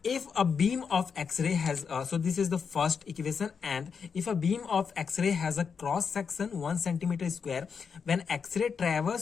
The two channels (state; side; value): quieter; right; 6.1 dB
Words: If a beam of X-ray has so this is the first equation, and if a beam of X-ray has a cross section 1 centimeter square, when X-ray